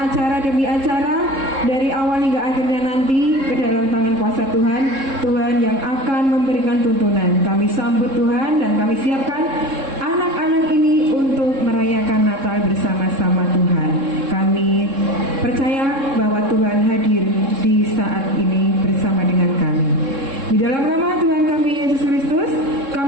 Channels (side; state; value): left; late; 3.7 ms